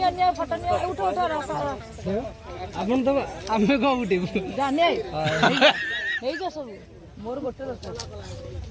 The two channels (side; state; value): both; identical; correlation 1.00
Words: फोटो नियो उठो अपन तो आमे को उठिबु जाने हेई जा सब मोर गोटे दरकार